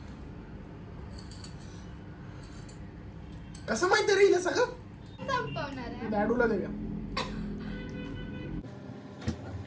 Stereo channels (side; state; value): both; identical; correlation 1.00